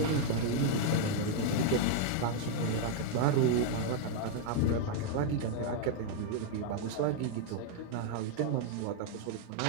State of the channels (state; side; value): different; both; correlation 0.00